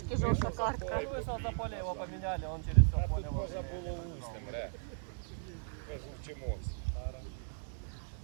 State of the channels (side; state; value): left; silent; digital silence